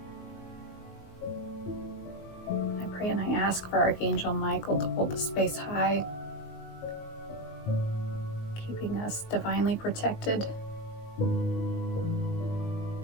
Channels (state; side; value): late; right; 19 ms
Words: I pray and I ask for Archangel Michael to hold the space high, keeping us divinely protected.